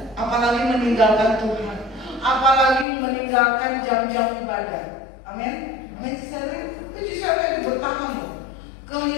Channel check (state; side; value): drops out; right; at 2.9 s